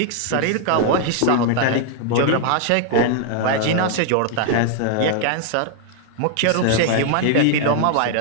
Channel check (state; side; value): different; both; correlation 0.00